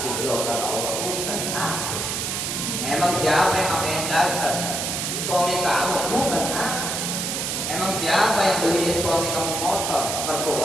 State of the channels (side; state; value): right; noise; hiss, 2 dB below the sound